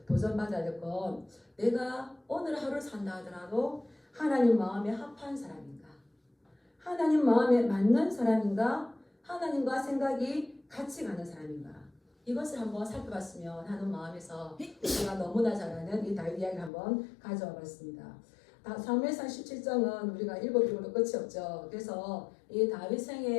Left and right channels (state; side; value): drops out; right; at 16.7 s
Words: 도전받아야 될 건 내가 오늘 하루 산다 하더라도 하나님 마음에 합한 사람인가? 하나님 마음에 맞는 사람인가? 하나님과 생각이 같이 가는 사람인가? 이것을 한번 살펴봤으면 하는 마음에서 제가 너무나 잘 아는 이 다윗 이야기를 한번 가져와 봤습니다. 사무엘상 17장은 우리가 읽어도 끝이 없죠. 그래서 이 다윗